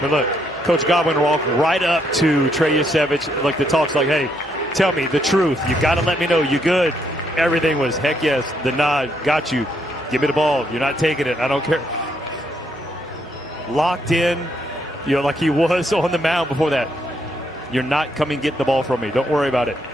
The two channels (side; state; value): both; normal; correlation 0.74